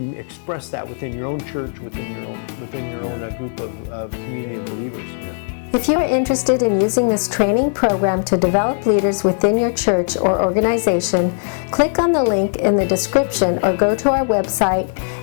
express that within your own church, within your own group of community of believers. If you are interested in using this training program to develop leaders within your church or organization, click on the link in the description or go to our website,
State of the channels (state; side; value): silent; right; digital silence